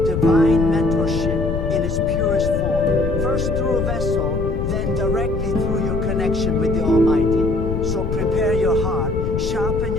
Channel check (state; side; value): noise; left; rumble, 2 dB below the sound